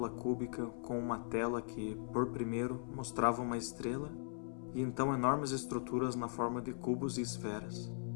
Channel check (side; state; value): right; silent; 52 dB below the other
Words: cúbica com uma tela que, por primeiro, mostrava uma estrela e então enormes estruturas na forma de cubos e esferas.